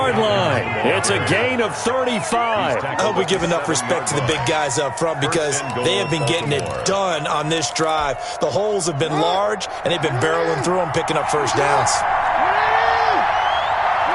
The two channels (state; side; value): identical; both; correlation 1.00